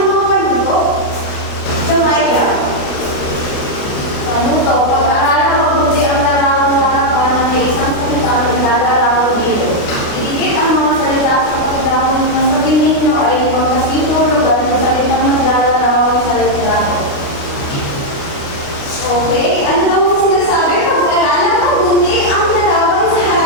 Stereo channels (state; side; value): late; right; 28 ms